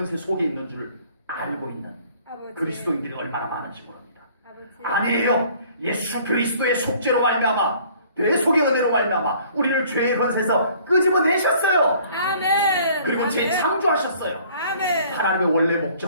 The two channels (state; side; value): inverted; both; correlation -0.55